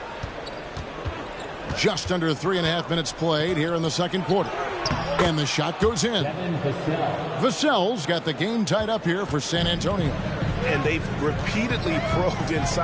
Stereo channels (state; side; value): identical; both; correlation 1.00